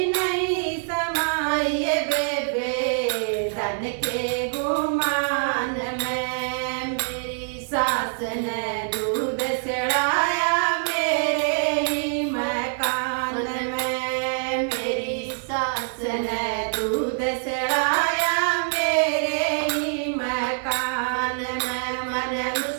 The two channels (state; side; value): silent; left; digital silence